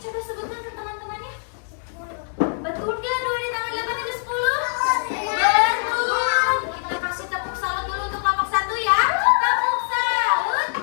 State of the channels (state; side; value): silent; right; digital silence